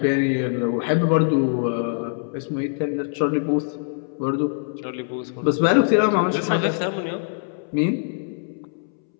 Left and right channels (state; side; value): silent; right; 63 dB below the other